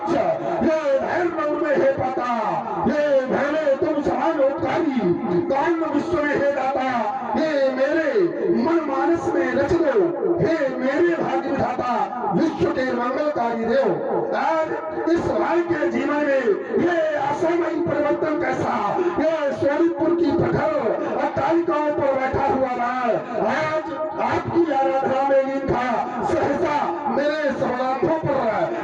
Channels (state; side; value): identical; both; correlation 1.00